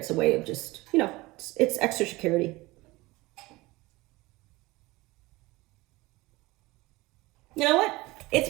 a way of just, it's extra security. You know what? It's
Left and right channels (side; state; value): left; quieter; 21.2 dB